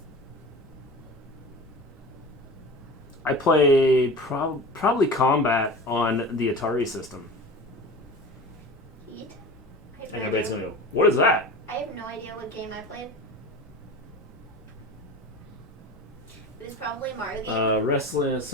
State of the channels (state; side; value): normal; both; correlation 0.34